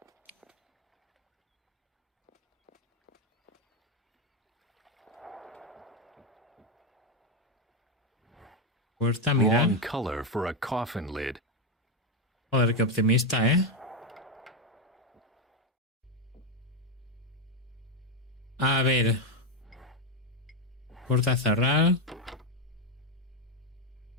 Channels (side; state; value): both; normal; correlation 0.08